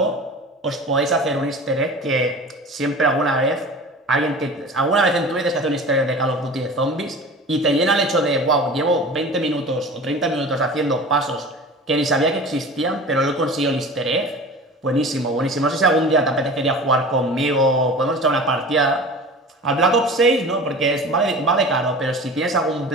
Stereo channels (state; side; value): normal; both; correlation 0.37